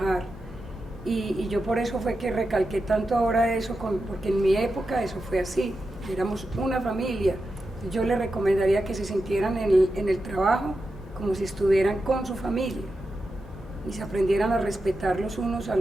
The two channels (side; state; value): both; normal; correlation 0.89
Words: Y yo por eso fue que recalqué tanto ahora eso, porque en mi época eso fue así, éramos una familia. Yo les recomendaría que se sintieran en el trabajo como si estuvieran con su familia. y se aprendieran a respetar los unos a